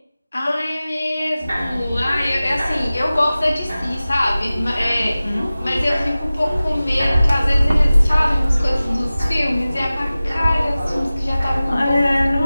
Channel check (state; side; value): inverted; both; correlation -0.97